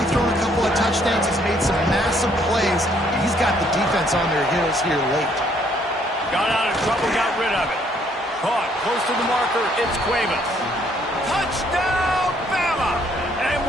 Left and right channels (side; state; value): both; normal; correlation 0.66